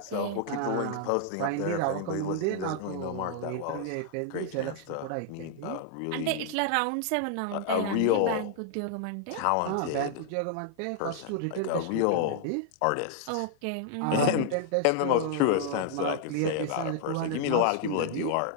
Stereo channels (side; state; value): both; different; correlation 0.00